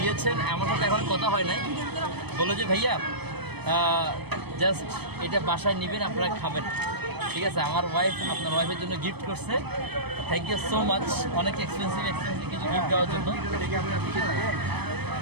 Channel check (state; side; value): late; left; 0.98 ms